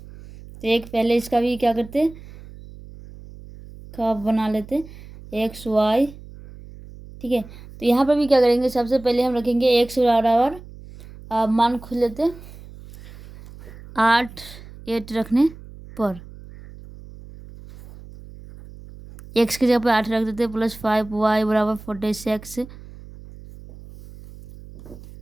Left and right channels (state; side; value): noise; right; hum, 18 dB below the sound